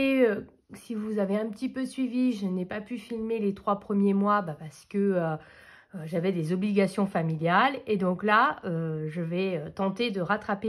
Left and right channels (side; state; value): both; identical; correlation 1.00